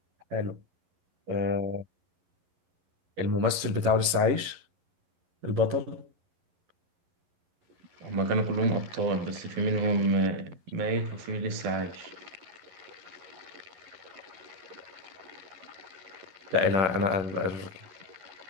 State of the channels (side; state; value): left; late; 11 ms